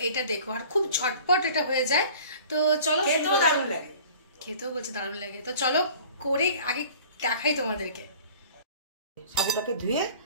এটা দেখো। আর খুব ঝটপট এটা হয়ে যায়। তো চলো, খেতেও দারুণ লাগে। খেতেও বলছে দারুণ লাগে। তো চলো করে আগে দেখাই তোমাদেরকে। সাবুটাকে ধুয়ে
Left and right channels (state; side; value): inverted; both; correlation -0.46